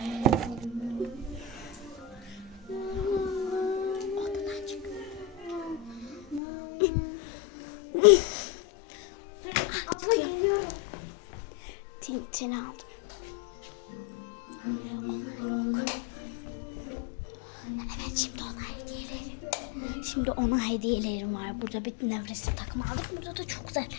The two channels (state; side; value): drops out; right; at 6.4 s